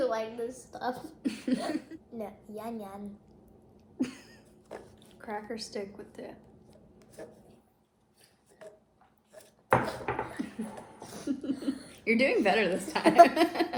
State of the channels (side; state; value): both; identical; correlation 1.00